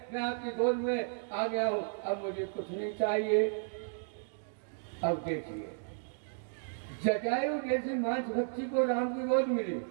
मैं आपकी गोद में आ गया हूँ, अब मुझे कुछ नहीं चाहिए। अब देखिए जटायु जैसे मांस भक्षी को राम की गोद मिली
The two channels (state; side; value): silent; left; digital silence